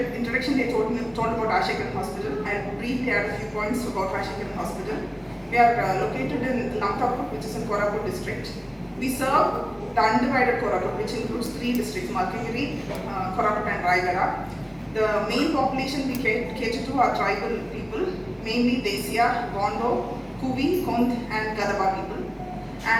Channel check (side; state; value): both; identical; correlation 1.00